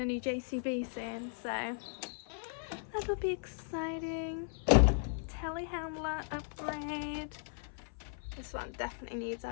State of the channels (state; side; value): silent; right; 53 dB below the other